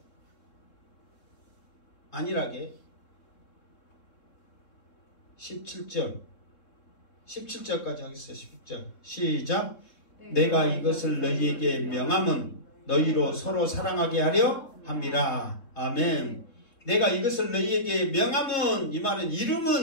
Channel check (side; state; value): right; late; 3.7 ms